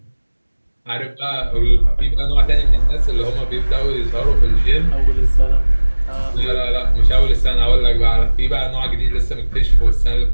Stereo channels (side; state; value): both; inverted; correlation -1.00